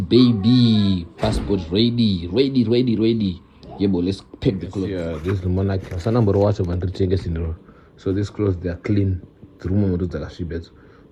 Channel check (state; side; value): identical; both; correlation 1.00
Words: Passport ready. Yeah, but let's pack the clothes. Yeah, this is the monarch. So these clothes, they are clean.